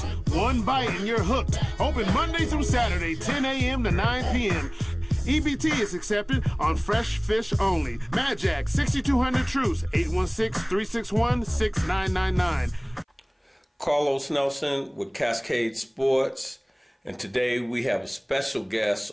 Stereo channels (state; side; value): identical; both; correlation 1.00